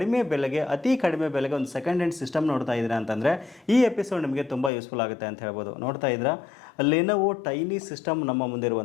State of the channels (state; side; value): drops out; right; at 4.7 s